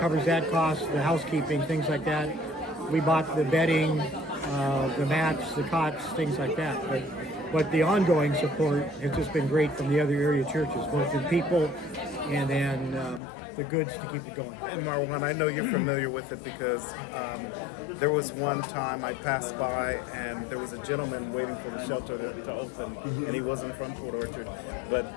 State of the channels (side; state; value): right; drops out; at 13.2 s